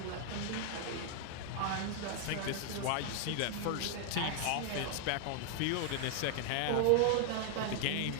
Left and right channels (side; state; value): both; different; correlation 0.00